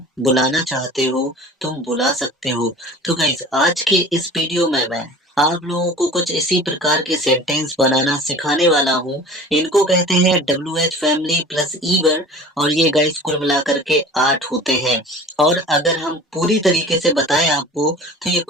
बुलाना चाहते हो तुम बुला सकते हो। तो गाइस, आज के इस वीडियो में मैं आप लोगों को कुछ इसी प्रकार के सेंटेंस बनाना सिखाने वाला हूँ। इनको कहते हैं WH फैमिली प्लस ईवर, और ये गाइस कुल मिलाकर के 8 होते हैं। और अगर हम पूरी तरीके से बताएं आपको तो ये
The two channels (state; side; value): normal; both; correlation 0.41